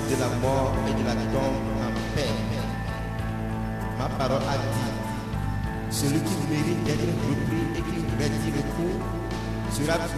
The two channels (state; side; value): identical; both; correlation 1.00